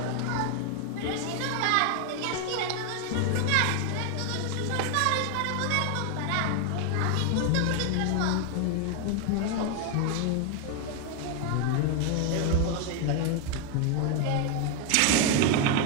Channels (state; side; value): different; both; correlation 0.01